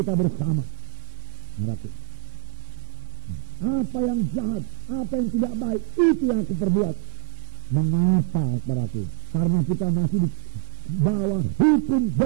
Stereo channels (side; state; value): left; silent; digital silence